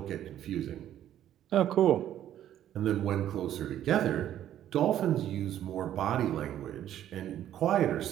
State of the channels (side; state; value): left; quieter; 11.5 dB